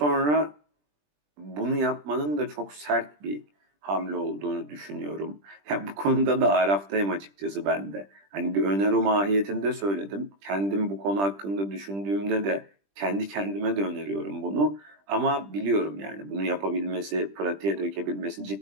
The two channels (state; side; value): late; left; 20 ms